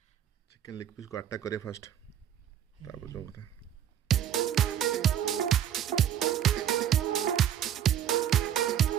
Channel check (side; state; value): left; quieter; 10.2 dB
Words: चिकन लेग पीस को अटैक करे फर्स्ट तापर जो बता